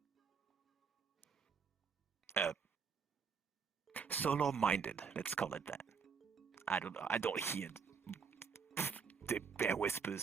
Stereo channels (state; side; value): quieter; left; 5.9 dB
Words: Solo-minded, let's call it that. I don't know. I don't hear the bear